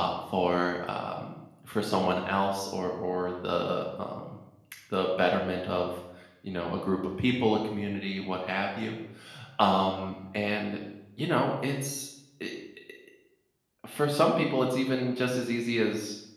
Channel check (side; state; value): both; identical; correlation 1.00